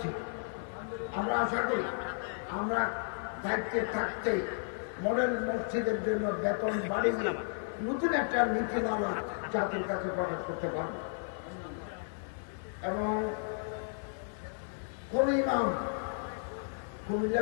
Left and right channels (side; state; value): right; silent; 55 dB below the other